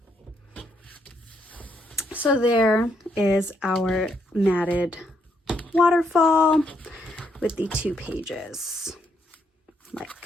So there is our matted waterfall with the 2 pages,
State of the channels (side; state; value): both; normal; correlation 0.74